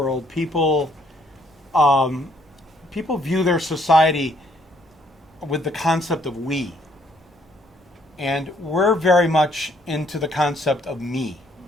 people view their society with the concept of we. And we're very much into the concept of me.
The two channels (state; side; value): normal; both; correlation 0.67